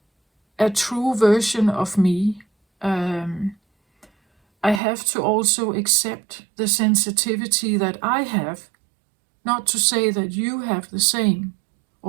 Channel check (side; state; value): left; drops out; at 4.8 s